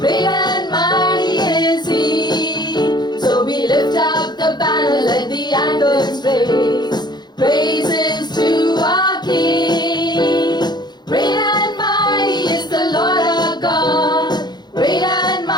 and mighty is He. So we lift up the banner, let the anthems raise. Praises to our King. Great and mighty is the Lord our God. Great and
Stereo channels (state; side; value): late; right; 0.21 ms